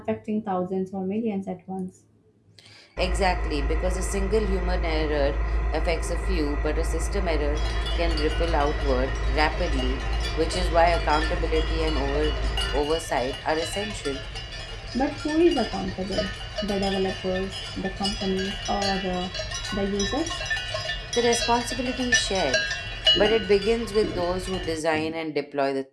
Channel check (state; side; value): identical; both; correlation 1.00